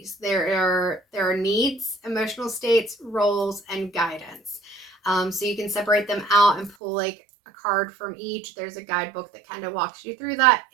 There are needs, emotional states, roles, and guidance. So you can separate them out and pull like a card from each. There's a guidebook that kind of walks you through that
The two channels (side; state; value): left; drops out; at 6.8 s